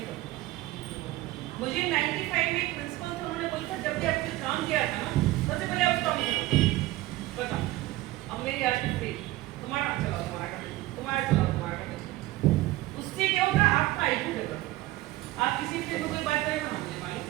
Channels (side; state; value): left; quieter; 17.4 dB